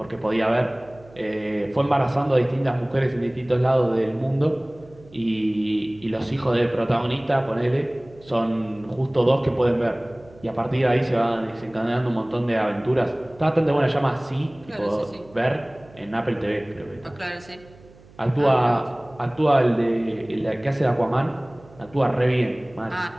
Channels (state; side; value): noise; right; hum, 25 dB below the sound